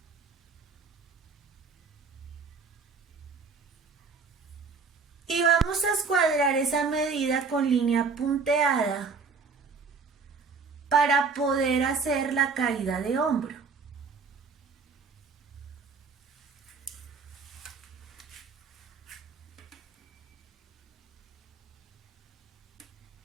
Y vamos a escuadrar esa medida con línea punteada para poder hacer la caída de hombro.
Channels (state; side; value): quieter; left; 4.9 dB